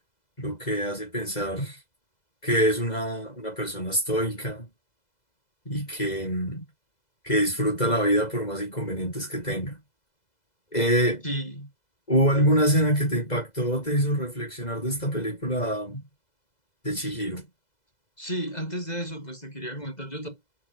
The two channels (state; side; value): late; right; 2.0 ms